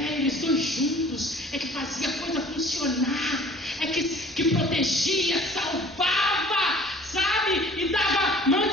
protegia, salvava, sabe? E dava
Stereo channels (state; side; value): normal; both; correlation 0.50